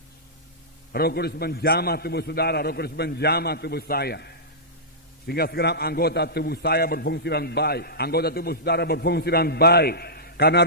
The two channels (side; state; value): both; normal; correlation -0.15